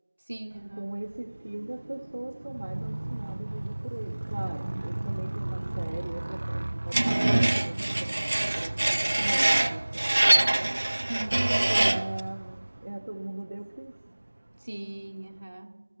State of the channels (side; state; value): both; inverted; correlation -1.00